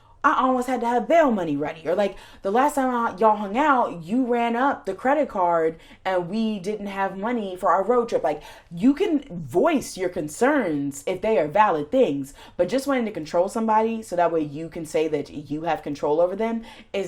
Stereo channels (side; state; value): both; identical; correlation 1.00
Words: I almost had to have bail money ready. Or like, the last time y'all hung out, you ran up the credit card and we didn't have money for our road trip. Like, you can voice your concerns if they are valid things, but just wanting to control somebody so that way you can say that you have control over them